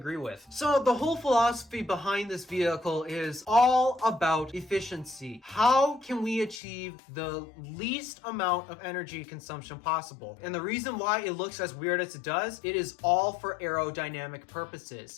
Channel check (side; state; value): right; drops out; at 6.6 s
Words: with. So the whole philosophy behind this vehicle is all about efficiency. How can we achieve the least amount of energy consumption possible? And the reason why it looks as weird as it does, it is all for aerodynamic purposes.